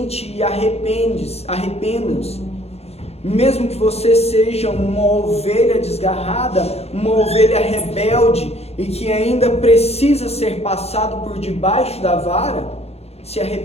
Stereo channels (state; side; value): late; right; 0.30 ms